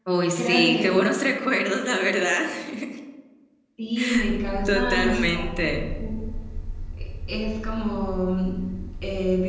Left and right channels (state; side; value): identical; both; correlation 1.00